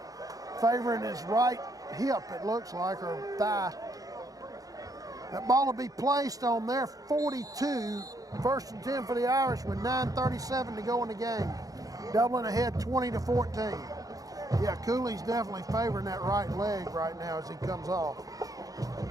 favoring his right hip, it looks like, or thigh. That ball will be placed on their 42, 1st and 10 for the Irish with 9:37 to go in the game. Dublin ahead 20-14. Yeah, Cooley's definitely favoring that right leg right now as he comes off.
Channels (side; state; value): left; late; 0.17 ms